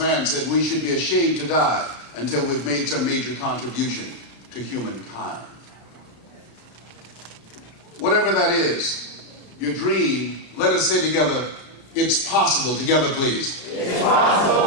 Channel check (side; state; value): right; late; 33 ms